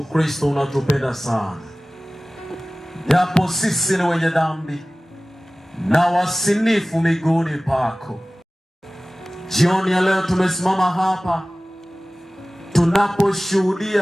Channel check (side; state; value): both; normal; correlation 0.98